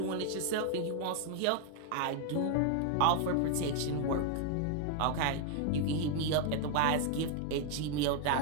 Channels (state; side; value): different; both; correlation 0.00